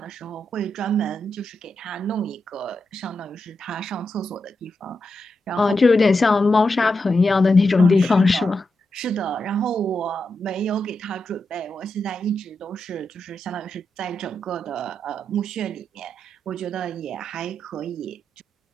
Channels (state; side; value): normal; both; correlation 0.86